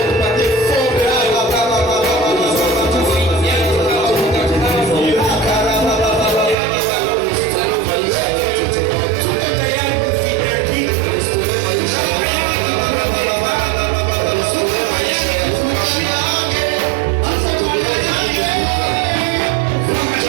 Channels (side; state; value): left; drops out; at 6.6 s